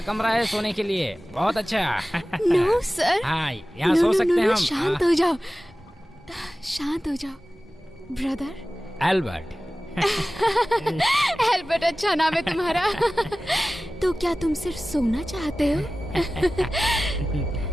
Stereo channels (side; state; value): both; normal; correlation 0.96